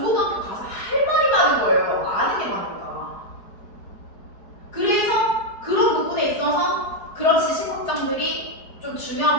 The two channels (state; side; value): late; right; 4.7 ms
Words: 가서 할 말이 많은 거예요. 아는 게 많으니까. 그래서 그런 부분에 있어서 그런 지식 확장들이 좀